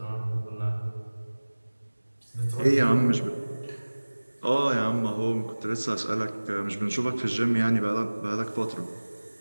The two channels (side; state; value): both; inverted; correlation -1.00